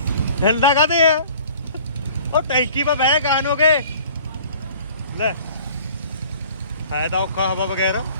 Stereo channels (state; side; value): inverted; both; correlation -0.50